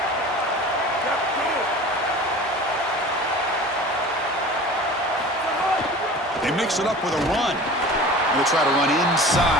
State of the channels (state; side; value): normal; both; correlation 0.39